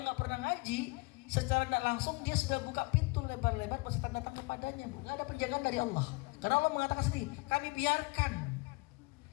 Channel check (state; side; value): quieter; right; 26.8 dB